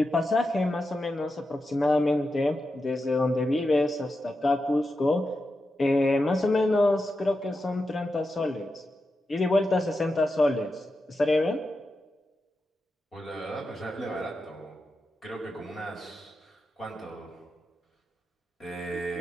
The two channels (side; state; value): both; normal; correlation 0.89